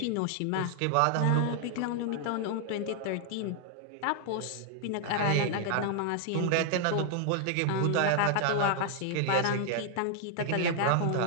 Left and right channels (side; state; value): both; different; correlation 0.00